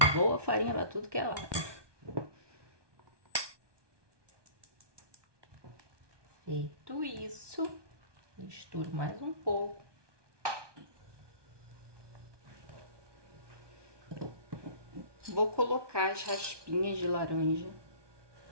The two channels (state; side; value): late; left; 1.2 ms